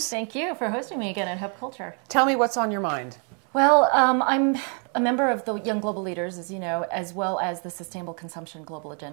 Thank you for hosting me again at Hub Culture. Tell me what's on your mind. Well, I'm a member of the Young Global Leaders, as you know, as well as the Sustainable Consumption Global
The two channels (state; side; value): quieter; left; 39.8 dB